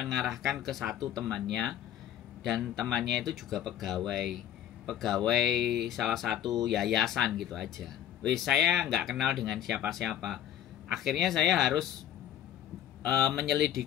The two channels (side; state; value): right; quieter; 10.8 dB